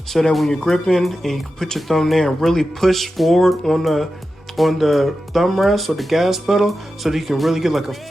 so that when you're gripping and you can put your thumb there and really push forward on the thumb rest or the gas pedal so that you can really get like a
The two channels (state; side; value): normal; both; correlation 0.91